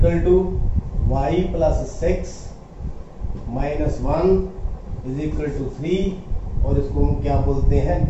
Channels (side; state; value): both; identical; correlation 1.00